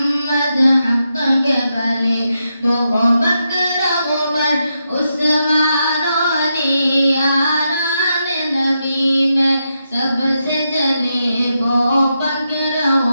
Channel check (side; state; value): both; inverted; correlation -0.84